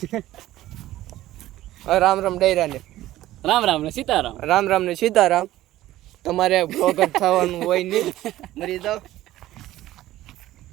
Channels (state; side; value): quieter; left; 15.0 dB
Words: રામ રામ ડૈરા ને રામ રામ ને સીતારામ રામ રામ ને સીતારામ તમારે બ્લોગર થવાનું હોય નહીં મરી જાવ